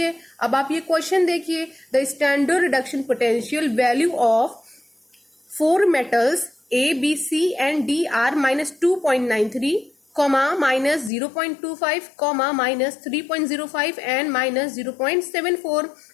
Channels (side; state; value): right; drops out; at 11.1 s